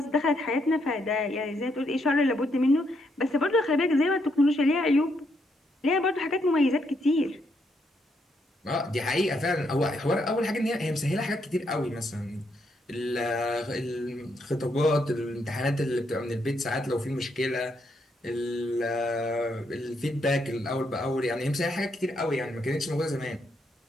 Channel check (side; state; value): both; normal; correlation 0.76